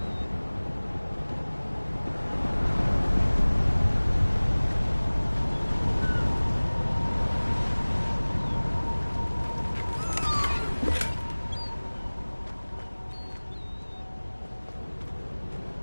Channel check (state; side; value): inverted; both; correlation -1.00